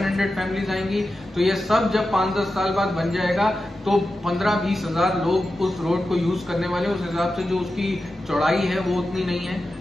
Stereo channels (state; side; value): normal; both; correlation 0.92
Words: फैमिलीज आएंगी। तो ये सब जब 5-10 साल बाद बन जाएगा तो 15-20 हजार लोग उस रोड को यूज करने वाले, उस हिसाब से जो उसकी चौड़ाई है वो उतनी नहीं है